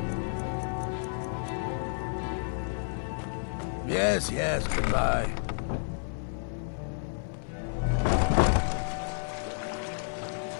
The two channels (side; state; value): right; silent; 57 dB below the other